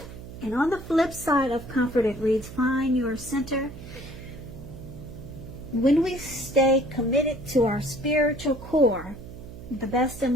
And on the flip side of comfort, it reads, find your center. When we stay committed to our spiritual core, the best and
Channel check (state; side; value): noise; right; hum, 13 dB below the sound